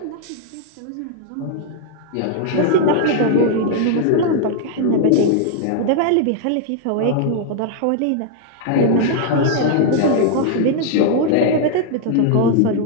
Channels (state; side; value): different; both; correlation -0.01